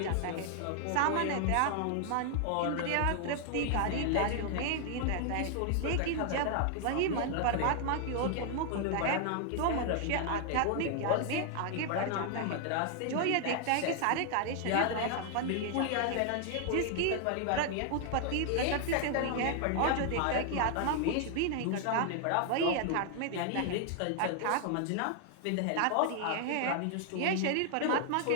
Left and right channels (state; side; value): different; both; correlation 0.00